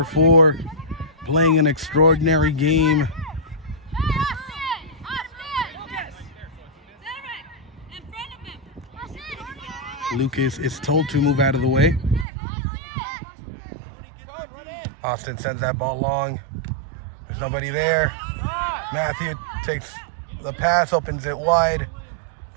4 playing an extraordinary game. Lucas is told to move out of the way. Austin sends that ball long. There's nobody there. Matthew takes the pass, opens it wide,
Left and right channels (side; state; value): left; drops out; at 12.2 s